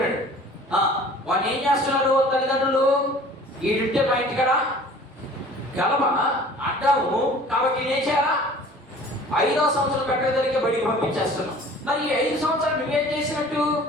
వాడిని ఏం చేస్తున్నారు తల్లిదండ్రులు, ఈడుంటే మా ఇంటికాడ గలబ అడ్డాము కాబట్టి నేనేం చేయాలా, 5వ సంవత్సరం పెట్టగలిగే బడికి పంపించేస్తున్నాం. మరి ఈ 5 సంవత్సరాలు నువ్వేం చేసినట్టు?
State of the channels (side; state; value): both; normal; correlation 0.47